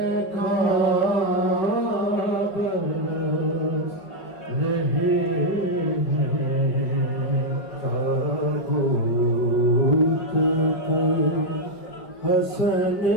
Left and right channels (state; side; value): late; right; 5.6 ms